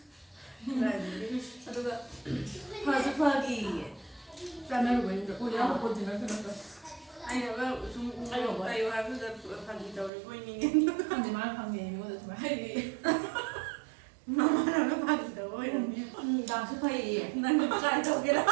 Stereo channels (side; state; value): left; drops out; at 10.1 s